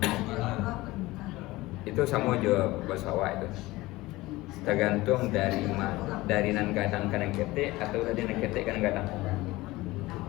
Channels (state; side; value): quieter; right; 19.6 dB